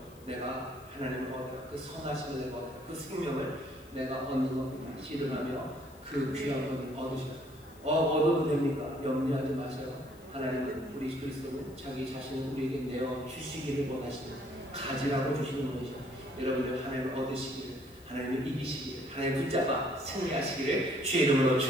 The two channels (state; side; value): noise; left; hiss, 25 dB below the sound